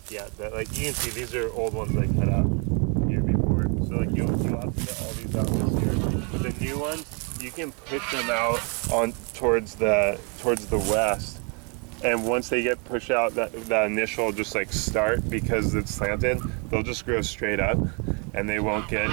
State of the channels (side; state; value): left; quieter; 33.6 dB